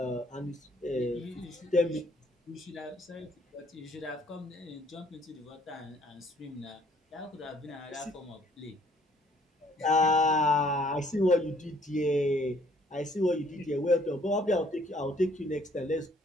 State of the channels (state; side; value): normal; both; correlation 0.61